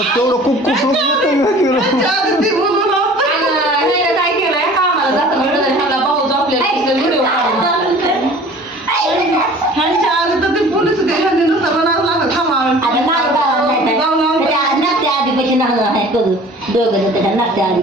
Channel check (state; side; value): normal; both; correlation 0.46